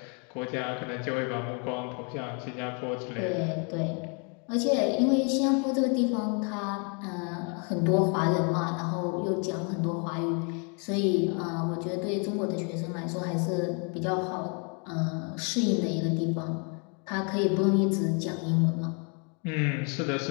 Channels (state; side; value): quieter; right; 36.8 dB